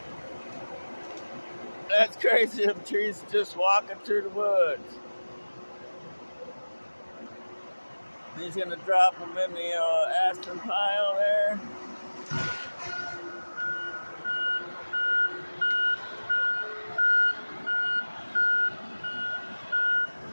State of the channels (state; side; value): inverted; both; correlation -1.00